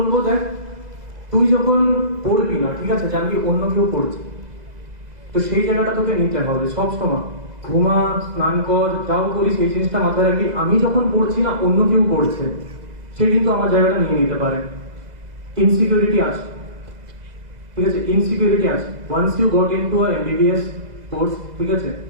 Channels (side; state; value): left; late; 2.0 ms